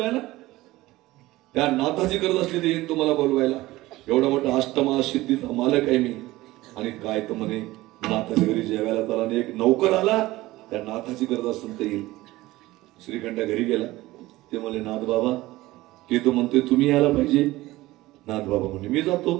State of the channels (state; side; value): quieter; left; 18.2 dB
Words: त्या नाथाची गरज असली ते येईन तुम्हाला बोलवायला. एवढा मोठा अष्टमा सिद्धीचा मालक आहे मी. आणि काय तर म्हणे नाथाच्या घरी जेवायला त्याला आणि एक नौकर आला, त्या नाथाची गरज असेल तर येईल. श्रीखंडा घरी गेला. ते म्हणले नाथ बाबा ते तो म्हणतोय तुम्ही यायला पाहिजे. नाथ बाबा म्हणले मी जातो.